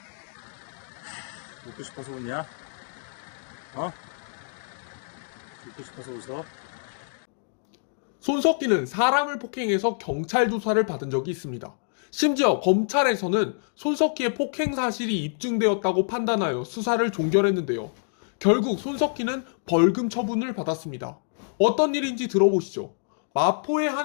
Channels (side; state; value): right; silent; digital silence